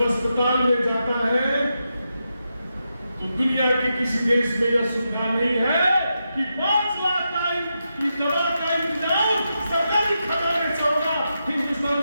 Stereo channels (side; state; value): both; inverted; correlation -0.87